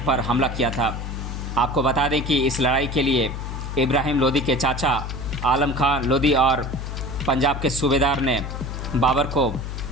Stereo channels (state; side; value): noise; left; hum, 6 dB below the sound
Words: हमला किया था। आपको बता दें कि इस लड़ाई के लिए इब्राहिम लोदी के चाचा आलम खान लोदी और पंजाब के सूबेदार ने बाबर को